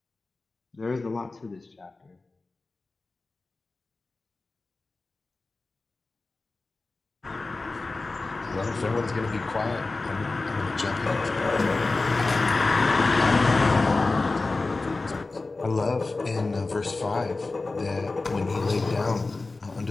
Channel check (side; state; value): right; quieter; 3.5 dB